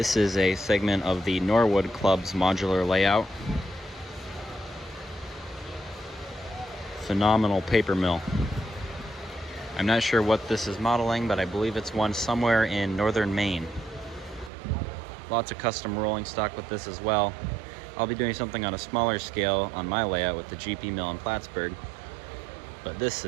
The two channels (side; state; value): left; drops out; at 14.5 s